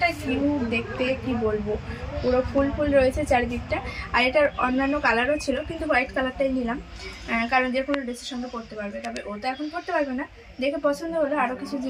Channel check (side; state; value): both; identical; correlation 1.00